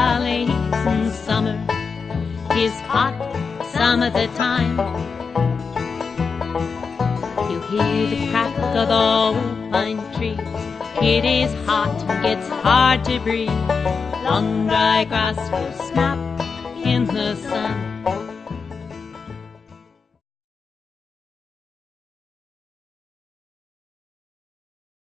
and summer is hot some of the time. You hear the crack of the old pine trees. It is hot and gets hard to breathe. Long dry grass will snap in the sun.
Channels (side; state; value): right; quieter; 5.2 dB